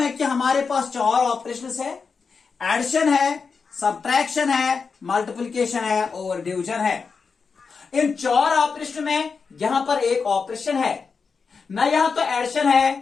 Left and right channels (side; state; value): right; quieter; 5.2 dB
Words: कि हमारे पास चार ऑपरेशंस है, एडिशन है, सब्ट्रैक्शन है, मल्टीप्लिकेशन है और डिवीजन है। इन चार ऑपरेशन में यहां पर एक ऑपरेशन है, न यहां तो एडिशन